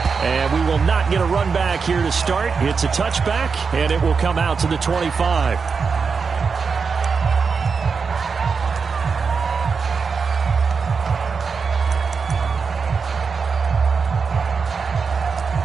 And we will not get a run back here to start. It's a touchback, and it will come out to the 25.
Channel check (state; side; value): quieter; left; 5.3 dB